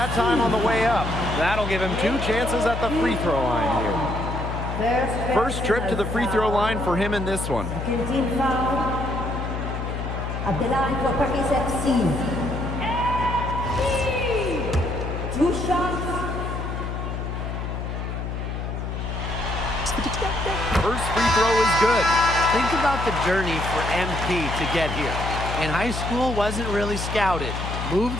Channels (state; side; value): noise; left; hum, 4 dB below the sound